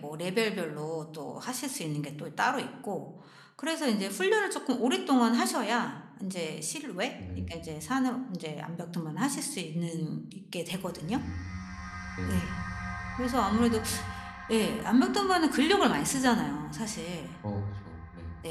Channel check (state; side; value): identical; both; correlation 1.00